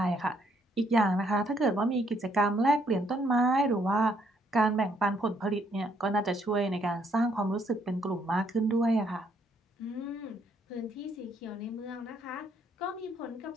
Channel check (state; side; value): normal; both; correlation 0.70